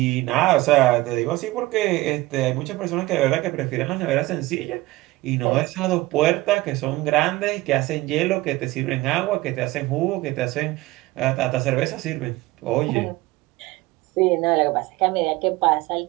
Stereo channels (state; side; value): quieter; left; 19.4 dB